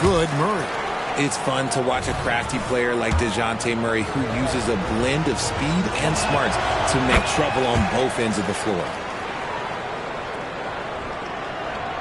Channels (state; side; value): identical; both; correlation 1.00